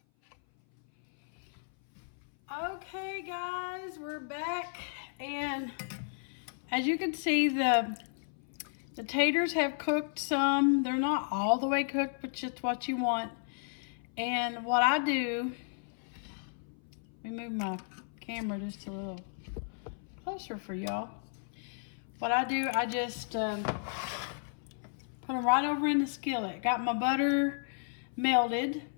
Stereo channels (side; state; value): right; silent; 55 dB below the other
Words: Okay guys, we're back, and as you can see, the taters have cooked some. They're not all the way cooked, but just what you want. And what I do, let me move my camera just a little closer for y'all. What I do, I just put them right over in the skillet. Got my butter melted.